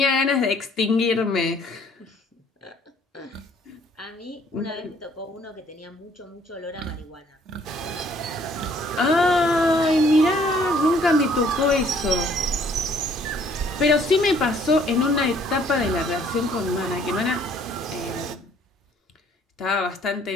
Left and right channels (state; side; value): normal; both; correlation 0.61